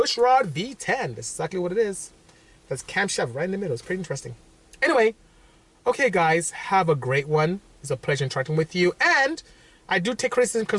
rod V10. That's exactly what it is. That's camshaft right in the middle. It's pretty interesting. Anyway, okay, guys, have a great one. It's a pleasure interacting with you. And I do take criticism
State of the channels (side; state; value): both; identical; correlation 1.00